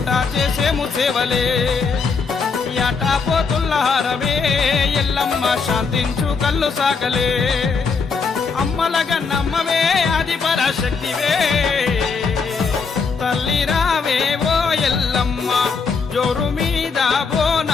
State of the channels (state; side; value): quieter; right; 5.1 dB